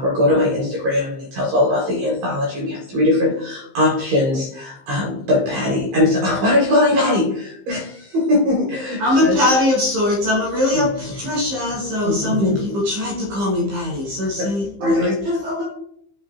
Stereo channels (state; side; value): late; left; 15 ms